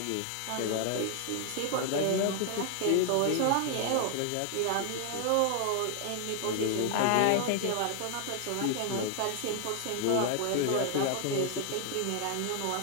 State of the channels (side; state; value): both; different; correlation 0.00